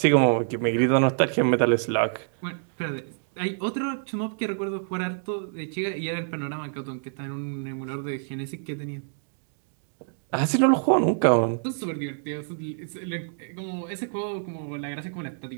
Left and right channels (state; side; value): silent; left; digital silence